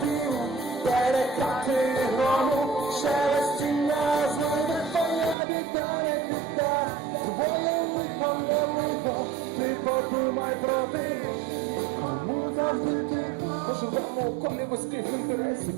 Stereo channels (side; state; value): left; drops out; at 5.4 s